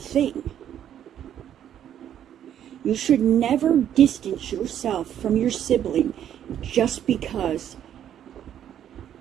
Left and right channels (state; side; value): quieter; left; 10.2 dB